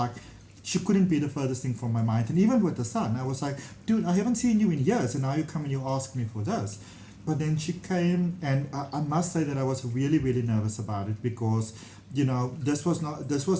she couldn't be the furthest thing from my mind. And even with the son, I was like, dude, I haven't seen you in years, and now you come and you ask me for this. But then she came, and I must say that I was really, really nervous about it, because, you know, this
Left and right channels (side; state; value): both; identical; correlation 1.00